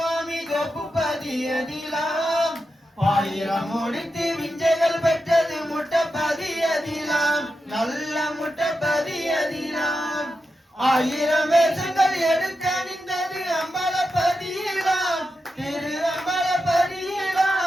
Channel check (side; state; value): both; normal; correlation 0.89